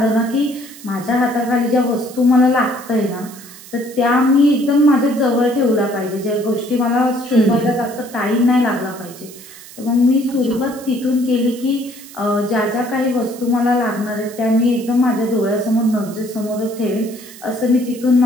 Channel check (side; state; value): right; noise; hiss, 18 dB below the sound